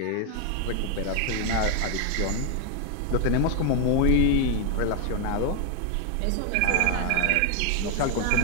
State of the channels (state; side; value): different; both; correlation 0.01